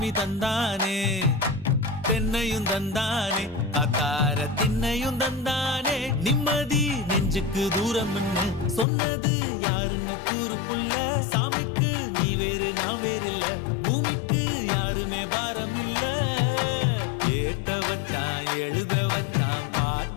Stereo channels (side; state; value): right; drops out; at 8.8 s